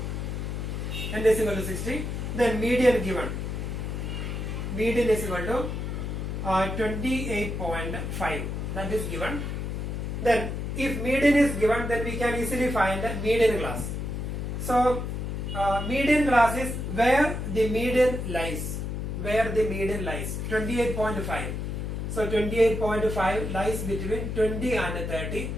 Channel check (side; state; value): left; noise; hum, 4 dB below the sound